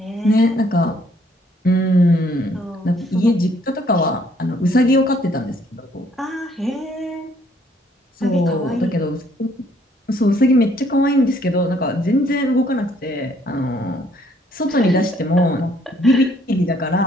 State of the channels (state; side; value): normal; both; correlation 0.64